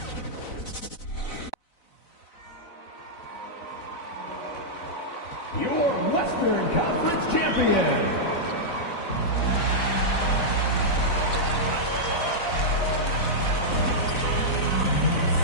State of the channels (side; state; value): right; late; 4.0 ms